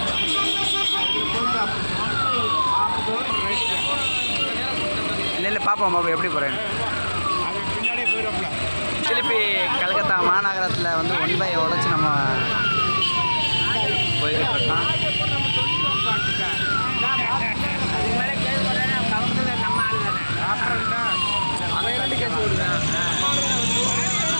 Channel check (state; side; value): inverted; both; correlation -1.00